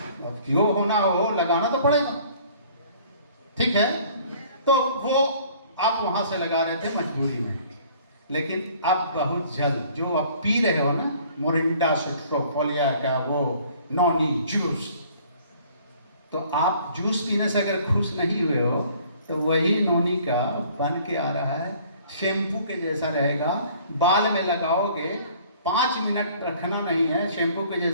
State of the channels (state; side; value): inverted; both; correlation -0.55